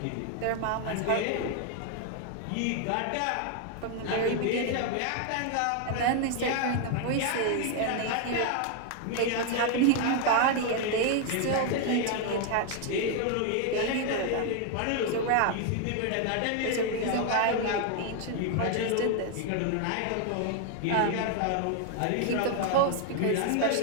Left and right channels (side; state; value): both; different; correlation 0.00